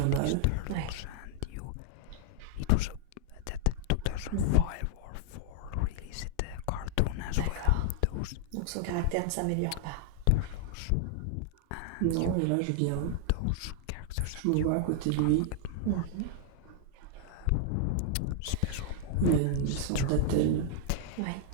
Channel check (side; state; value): both; different; correlation -0.01